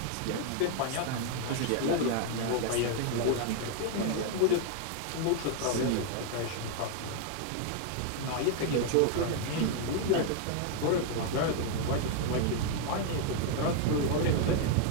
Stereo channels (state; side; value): different; both; correlation 0.00